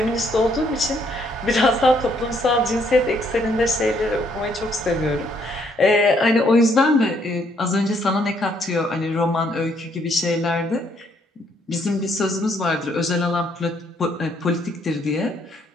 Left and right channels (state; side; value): normal; both; correlation 0.69